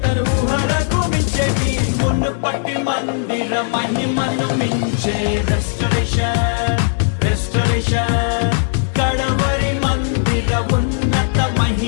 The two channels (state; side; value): silent; right; digital silence